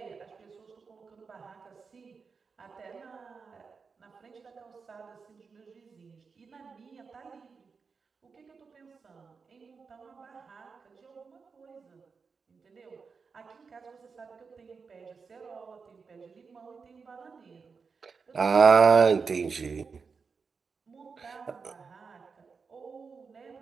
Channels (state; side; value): quieter; left; 5.2 dB